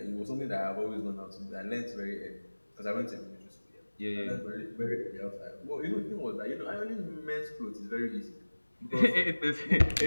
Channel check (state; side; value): inverted; both; correlation -1.00